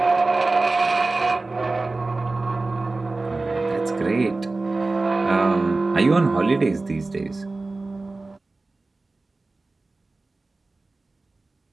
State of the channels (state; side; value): quieter; left; 3.4 dB